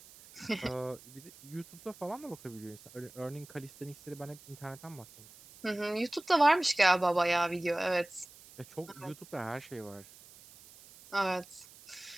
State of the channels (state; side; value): noise; right; hiss, 21 dB below the sound